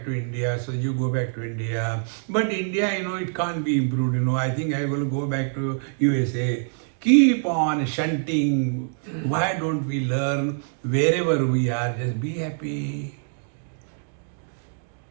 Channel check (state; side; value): silent; left; digital silence